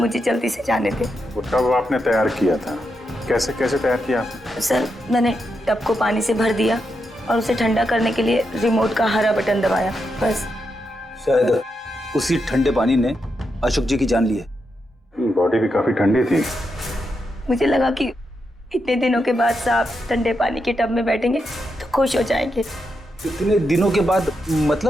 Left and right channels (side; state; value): both; normal; correlation 0.84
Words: जल्दी से जाने दें। वो टब आपने तैयार किया था, कैसे कैसे तैयार किया आपने? सर, मैंने टब को पानी से भर दिया और उसे ठंडा करने के लिए रिमोट का हरा बटन दबाया, बस। शायद उसी ठंडे पानी ने अशोक जी की जान ली है। बॉडी भी काफी ठंडी थी। मुझे लगा कि इतने दिनों के बाद साहब ठंडे पानी के टब में बैठेंगे तो खुश हो जाएंगे। इतने दिनों के बाद